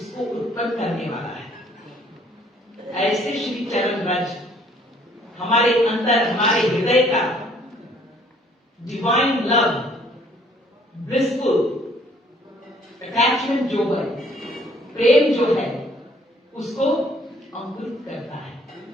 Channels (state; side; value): normal; both; correlation 0.61